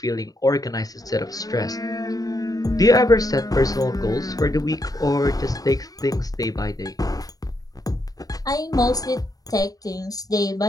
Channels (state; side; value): late; right; 0.18 ms